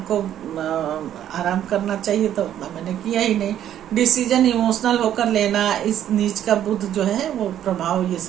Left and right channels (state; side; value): quieter; left; 10.9 dB